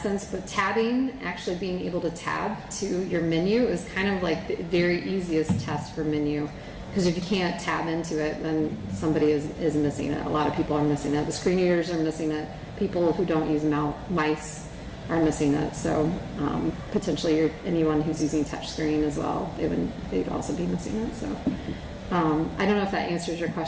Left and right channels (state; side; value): identical; both; correlation 1.00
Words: sense. But tabbing, actually being able to tab to your menu, is kind of like the very easiest test for menu. Because if you can't tab into it, then somebody is missing it. A lot of people are missing it. The screen readers are missing it. People who don't use mice are missing it. So potentially anyone who's using touchscreen as well, they'd also be missing it. So I don't know if that answers your